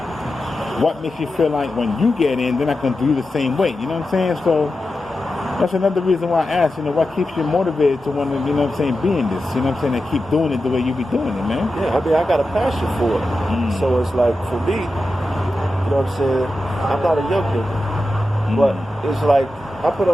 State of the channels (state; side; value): normal; both; correlation 0.91